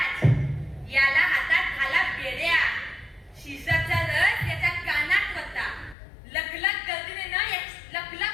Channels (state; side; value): drops out; right; at 6.0 s